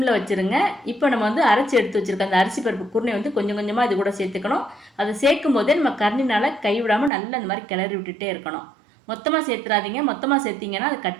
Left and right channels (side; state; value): left; drops out; at 7.1 s